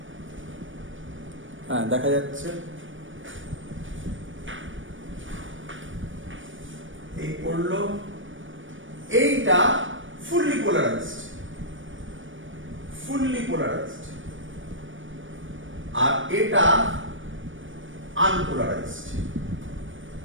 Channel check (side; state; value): left; late; 0.57 ms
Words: হ্যাঁ দেখা যাচ্ছে। এই পড়লো, এইটা ফুললি পোলারাইজড, আর এটা আনপোলারাইজড।